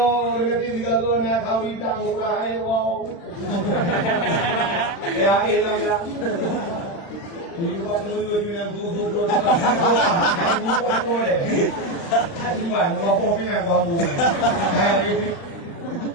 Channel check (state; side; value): late; right; 36 ms